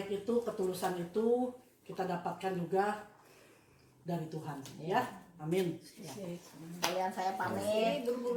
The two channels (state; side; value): identical; both; correlation 1.00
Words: itu, ketulusan itu kita dapatkan juga dari Tuhan ya. Amin. Kalian saya pamit.